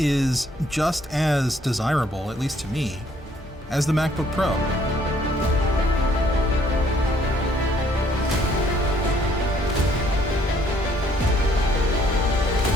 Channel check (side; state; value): both; normal; correlation 0.64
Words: just as desirable, at least to me, as the MacBook Pro.